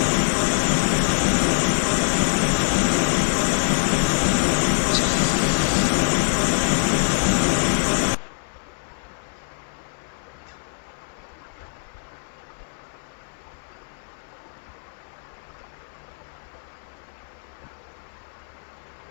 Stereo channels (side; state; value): right; silent; 58 dB below the other